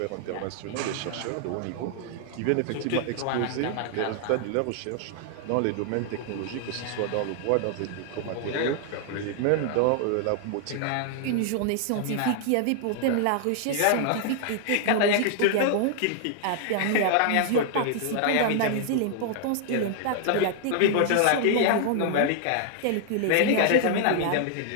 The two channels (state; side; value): different; both; correlation 0.00